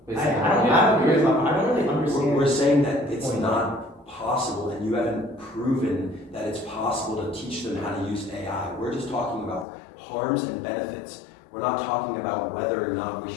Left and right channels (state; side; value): drops out; right; at 9.7 s